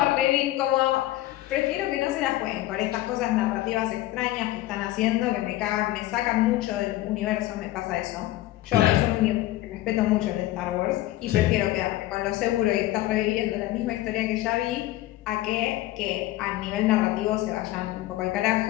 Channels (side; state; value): right; quieter; 16.1 dB